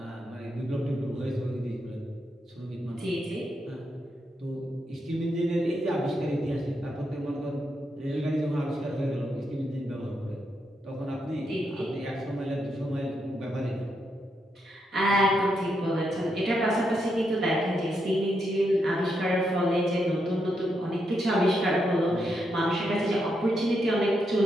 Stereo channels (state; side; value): normal; both; correlation 0.81